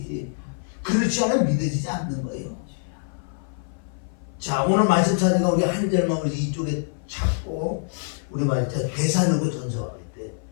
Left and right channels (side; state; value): right; silent; 58 dB below the other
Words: 그렇지 않으면 믿어지지 않는 거예요. 자 오늘 말씀 찾으니까 우리 한 절만 우리 이쪽에 찾고 우리 말씀 대사르고 전서가 있대.